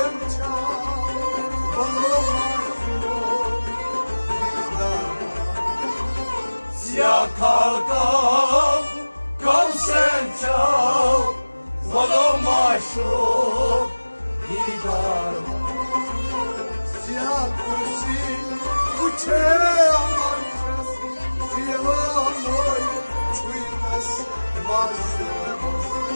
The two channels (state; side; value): inverted; both; correlation -1.00